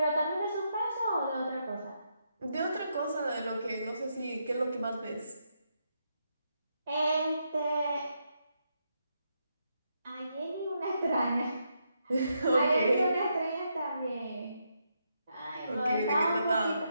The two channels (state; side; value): inverted; both; correlation -0.80